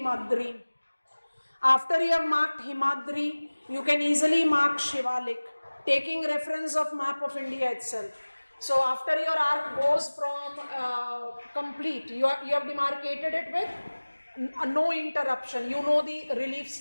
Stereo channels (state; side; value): inverted; both; correlation -1.00